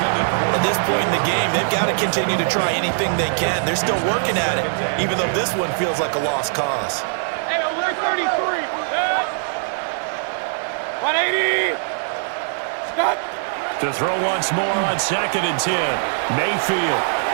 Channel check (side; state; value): left; silent; digital silence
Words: At this point in the game, they've got to continue to try anything they can. They're still working at it, even though this one feels like a lost cause. 180. Stop. To throw once more on 2nd and 10. Mayfield.